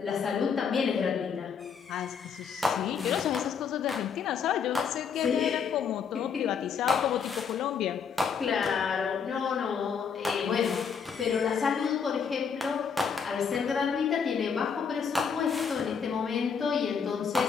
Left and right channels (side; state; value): right; quieter; 6.5 dB